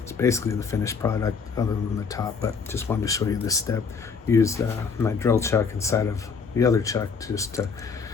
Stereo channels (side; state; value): right; quieter; 5.5 dB